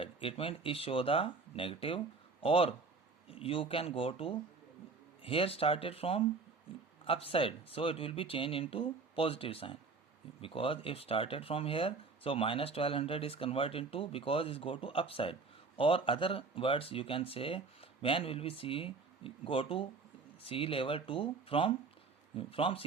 it means it show the negative, or you can go to here started from upside, so it will be changed into positive sign, because if started from here, so minus 1200 is converted into, because it go to upside, or other words you can say when will we see go to sea level to from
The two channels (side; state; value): left; quieter; 4.3 dB